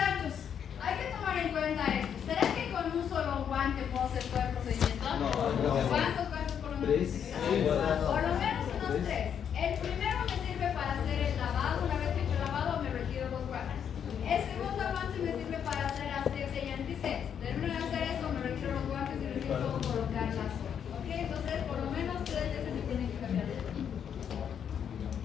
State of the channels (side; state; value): right; quieter; 8.3 dB